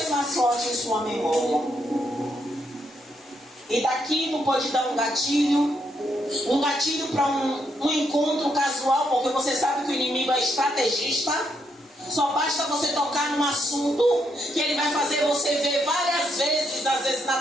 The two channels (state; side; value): normal; both; correlation 0.77